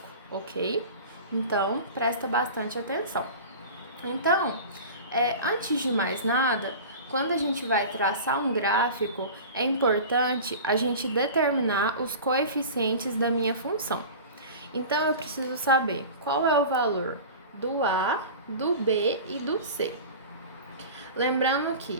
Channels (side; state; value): both; inverted; correlation -0.36